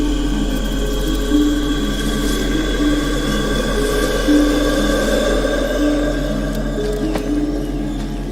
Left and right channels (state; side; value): noise; right; hum, 21 dB below the sound